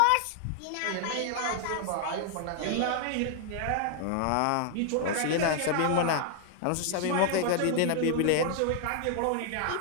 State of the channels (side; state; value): both; different; correlation 0.00